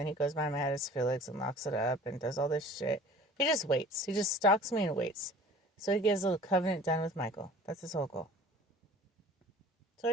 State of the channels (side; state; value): both; normal; correlation 0.45